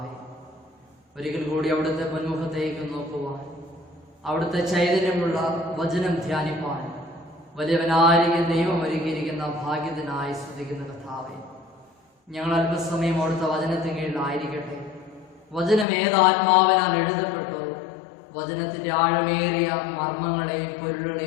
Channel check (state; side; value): drops out; right; at 15.9 s